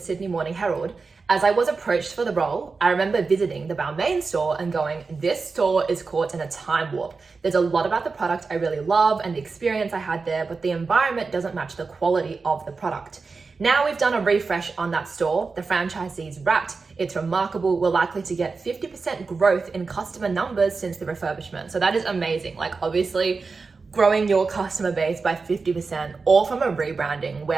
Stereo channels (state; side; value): quieter; left; 4.4 dB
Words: Morning Herald, "As I was approached for the role, I remember visiting the Balmain store and going, this store is caught in a time warp. There's a lot about the product I really love and the experience I had there, but the environment doesn't match the quality of the product. Now we've done a refresh on that store. The franchisee's wrapped. It's remarkable. We're likely to get 50% growth in customer numbers since the refurbishment." So that is amazing. Like obviously, growing your customer base by 50%, all from a rebranding,